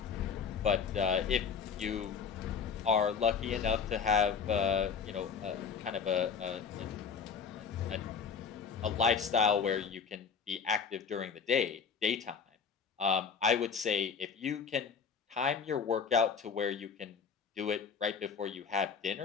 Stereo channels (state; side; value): quieter; right; 6.2 dB